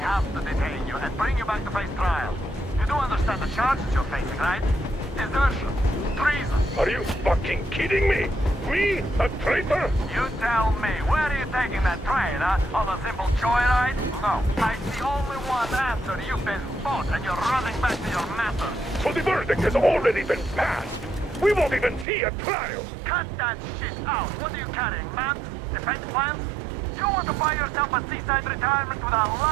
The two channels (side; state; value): left; drops out; at 22.1 s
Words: to detain you and bring you back to face trial. You do understand the charges you're facing, right? Desertion. Treason. Are you fucking kidding me? Me? A traitor? You tell me, where are you taking that train, huh? On a simple joyride? No, I see only one answer. You've been fought and you're running back to your master. So the verdict has already been passed. We won't even see a trial. Cut that shit out. What are you carrying, man? Defense plans? You want to buy yourself a seaside retirement without